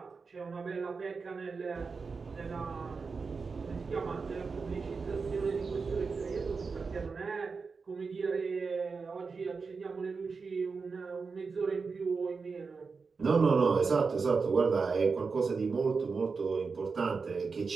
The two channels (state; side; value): quieter; left; 4.8 dB